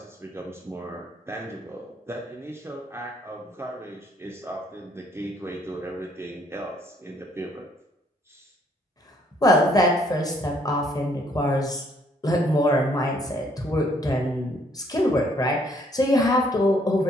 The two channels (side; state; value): both; normal; correlation 0.66